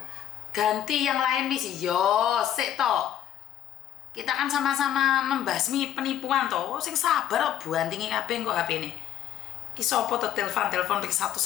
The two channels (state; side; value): quieter; right; 10.9 dB